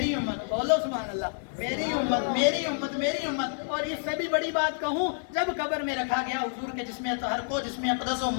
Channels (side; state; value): right; silent; 59 dB below the other